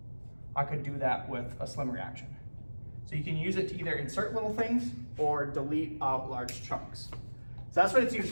I could do that with a SLIM reaction. So you can use it to either insert little things or delete out large chunks. So that's what it's used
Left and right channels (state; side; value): inverted; both; correlation -1.00